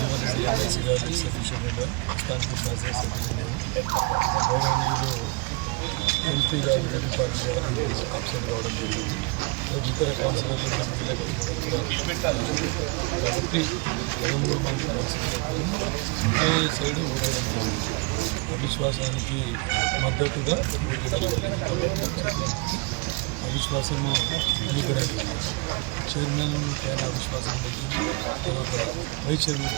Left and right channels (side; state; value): left; quieter; 29.0 dB